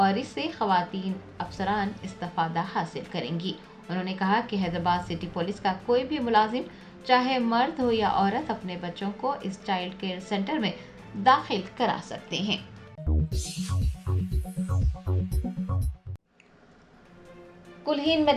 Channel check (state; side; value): identical; both; correlation 1.00